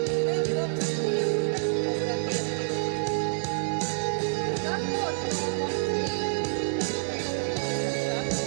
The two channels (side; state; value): left; silent; digital silence